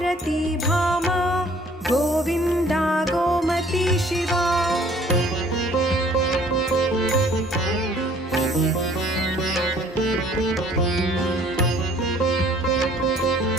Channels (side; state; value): both; normal; correlation 0.56